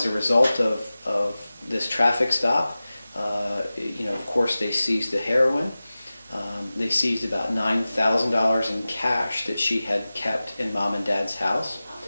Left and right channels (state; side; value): inverted; both; correlation -0.96